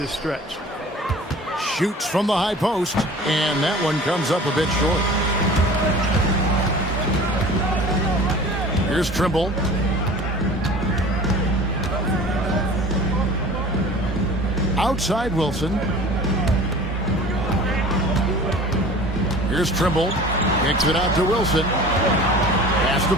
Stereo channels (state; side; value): normal; both; correlation 0.42